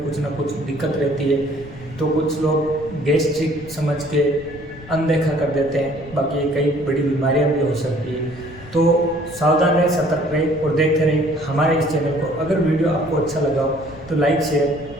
कुछ ना कुछ दिक्कत रहती है, तो कुछ लोग गैस्ट्रिक समझ के अनदेखा कर देते हैं, बाकी कई बड़ी बीमारियां भी हो सकती है। तो सावधान रहें, सतर्क रहें और देखते रहें हमारे इस चैनल को। अगर वीडियो आपको अच्छा लगा हो तो लाइक,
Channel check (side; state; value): left; noise; rumble, 18 dB below the sound